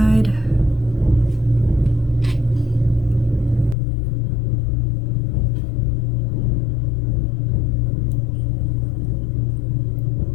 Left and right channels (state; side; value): drops out; right; at 3.8 s